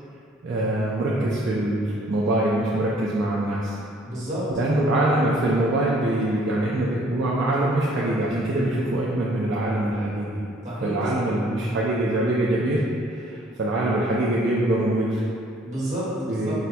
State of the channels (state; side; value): normal; both; correlation 0.59